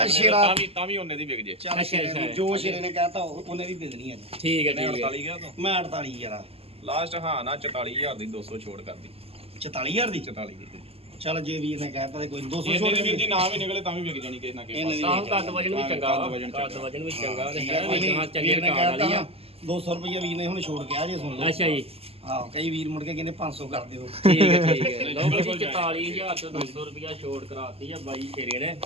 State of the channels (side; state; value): left; late; 0.29 ms